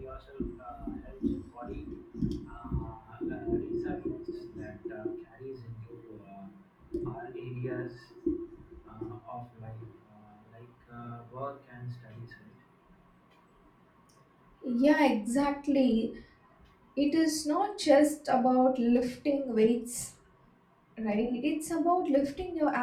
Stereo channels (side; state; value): both; identical; correlation 1.00